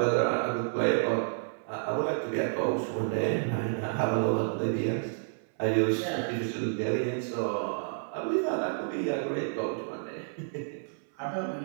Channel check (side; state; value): left; silent; 58 dB below the other